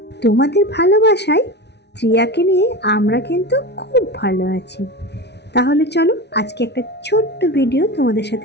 তোমাদের ভালোবাসায় ত্রিয়াকে নিয়ে আমরা কিন্তু খুব ভালো আছি। তাহলে চলো আজকে একটা ছোট্ট ভিডিও তোমাদের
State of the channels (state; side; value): late; right; 0.50 ms